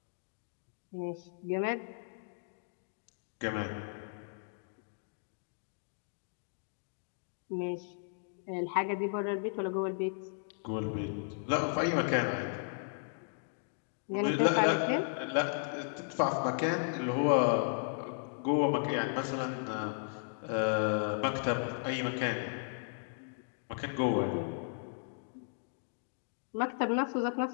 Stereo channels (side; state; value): right; silent; digital silence